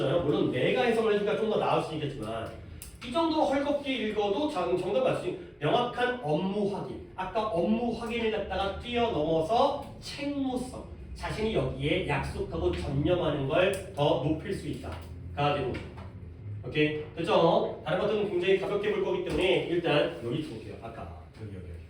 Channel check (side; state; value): both; identical; correlation 1.00